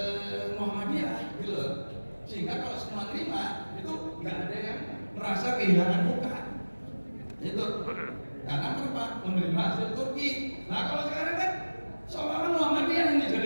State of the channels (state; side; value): inverted; both; correlation -1.00